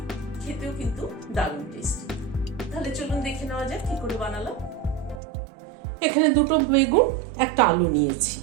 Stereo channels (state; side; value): drops out; left; at 5.2 s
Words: খেতেও কিন্তু দারুণ টেস্টি। তাহলে চলুন দেখে নেওয়া যাক কি করে বানালাম। এখানে দুটো বেগুন একটা আলু নিয়েছি,